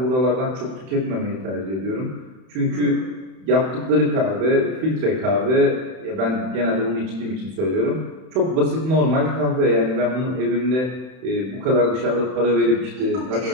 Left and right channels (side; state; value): left; late; 31 ms